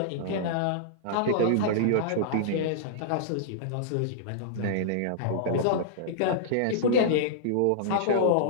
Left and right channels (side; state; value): both; different; correlation -0.02